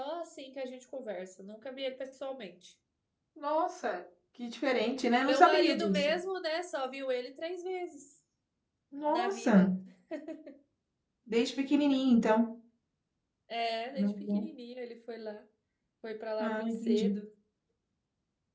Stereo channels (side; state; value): both; identical; correlation 1.00